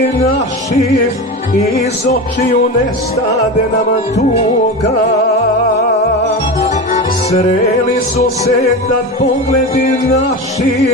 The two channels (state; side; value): normal; both; correlation 0.24